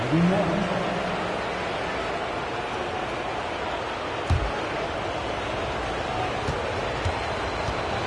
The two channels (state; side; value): identical; both; correlation 1.00